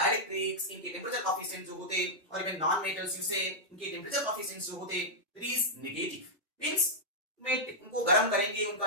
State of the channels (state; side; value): normal; both; correlation -0.07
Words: इनके टेम्परेचर कोफिशिएंट जो होते, और इवन नॉन मेटल्स यूज से इनके टेम्परेचर कोफिशिएंट्स जो होते, इट इज नेगेटिव। मींस में उनको गर्म करेंगे, उनका